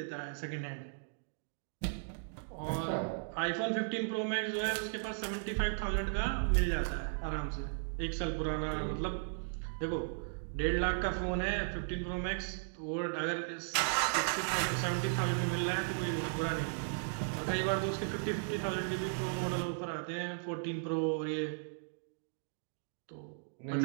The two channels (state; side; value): silent; left; digital silence